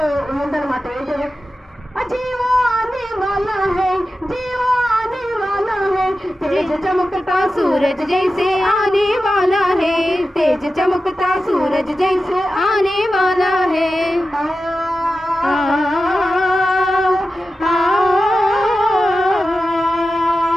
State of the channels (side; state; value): both; normal; correlation 0.93